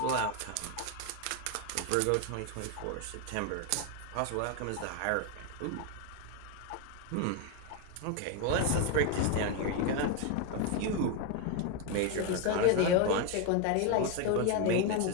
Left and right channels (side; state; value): both; different; correlation 0.02